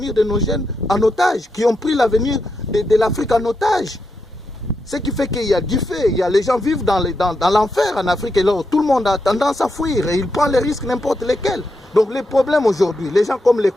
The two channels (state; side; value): normal; both; correlation 0.84